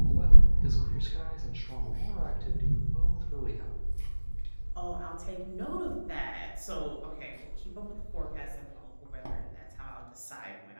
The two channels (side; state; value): both; inverted; correlation -1.00